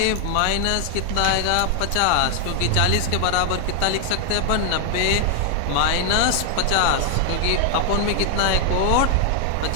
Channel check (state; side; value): different; both; correlation 0.00